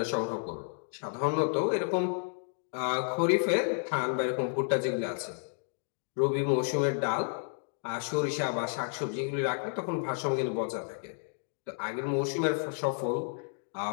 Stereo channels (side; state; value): right; silent; digital silence